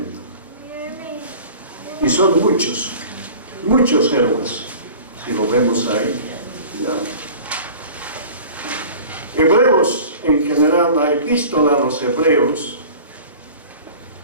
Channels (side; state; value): both; inverted; correlation -0.42